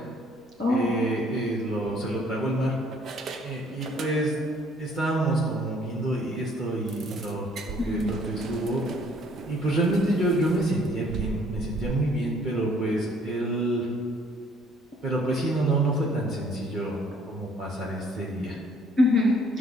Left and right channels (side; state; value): both; normal; correlation 0.61